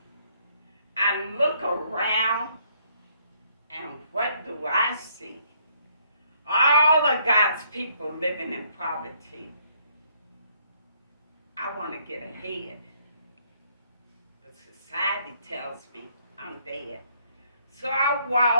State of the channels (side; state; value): both; inverted; correlation -0.68